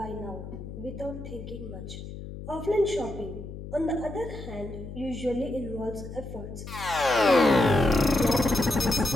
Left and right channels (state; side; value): noise; left; hum, 11 dB below the sound